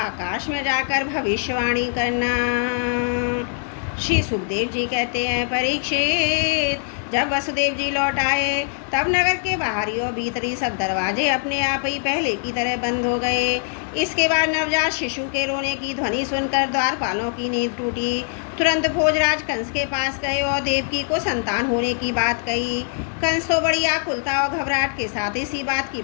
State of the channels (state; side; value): silent; right; 64 dB below the other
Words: में जाकर भविष्यवाणी करना। श्री सुखदेव जी कहते हैं, परीक्षित, जब वसुदेव जी लौट आए तब नगर के बाहरी और भीतरी सब दरवाजे अपने आप ही पहले की तरह बंद हो गए। इसके बाद नवजात शिशु के रोने की ध्वनि सुनकर द्वारपालों की नींद टूटी। तुरंत भोजराज कंस के पास गए और देवकी को संतान होने की बात कही। कंस तो बड़ी आकुलता और घबराहट के साथ इसी बात की